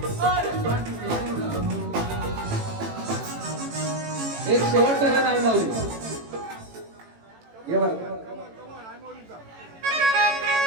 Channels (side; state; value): left; late; 18 ms